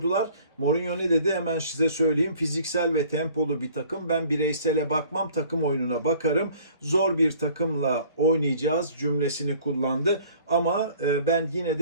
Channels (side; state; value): both; inverted; correlation -0.52